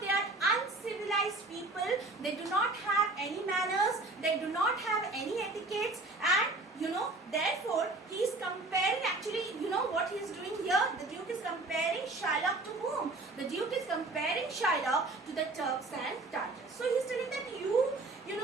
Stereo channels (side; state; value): left; quieter; 3.1 dB